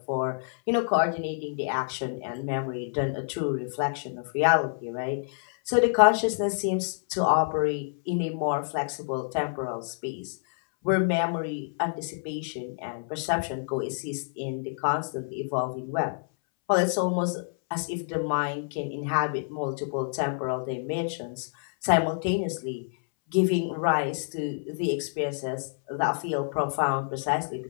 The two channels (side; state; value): right; silent; 59 dB below the other